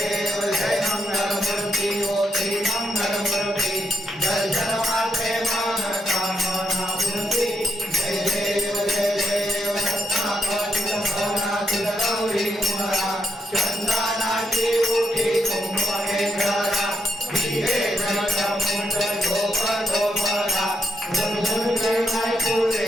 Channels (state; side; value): normal; both; correlation 0.79